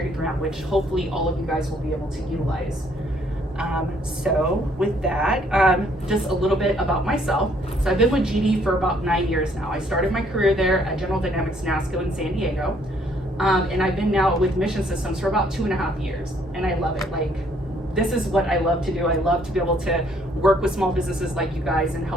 grant, which hopefully all of you guys will be able to utilize. So with that, just a little bit about myself. So I've been with GD for about 9 years now. I started my career there at General Dynamics NASCO in San Diego. And I've been now with Mission Systems for about 2.5 years. And I love it. Like, this is what I love to do. I love to be able to work with small businesses like you guys and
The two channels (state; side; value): normal; both; correlation 0.65